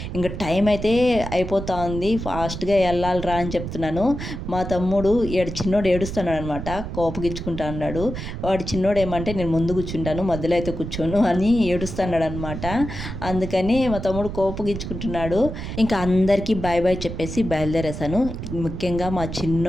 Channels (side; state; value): right; noise; rumble, 7 dB below the sound